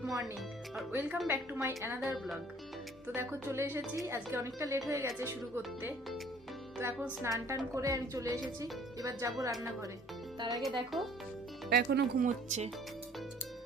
morning আর welcome back to my another blog. তো দেখো চলে এসেছি, আজকে অনেকটা লেট হয়ে গেছে শুরু করতে। তো এখন স্নান টান করে আমি চলে এসেছি, এবার যাব রান্নাঘরে। তার আগে দেখো এখনো ঘুমোচ্ছে।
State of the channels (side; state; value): both; normal; correlation 0.55